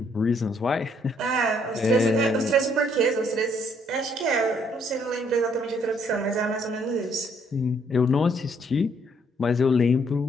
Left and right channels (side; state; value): both; normal; correlation 0.68